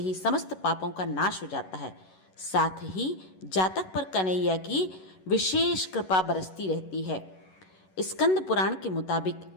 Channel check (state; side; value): late; right; 11 ms